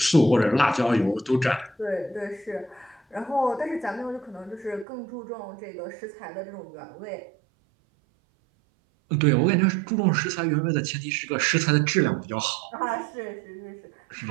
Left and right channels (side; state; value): left; drops out; at 4.9 s